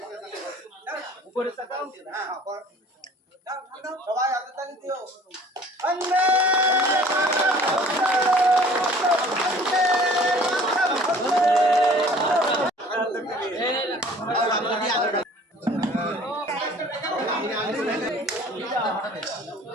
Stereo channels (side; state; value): both; normal; correlation 0.50